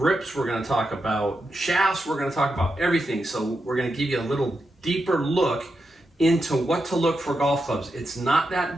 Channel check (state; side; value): normal; both; correlation 0.86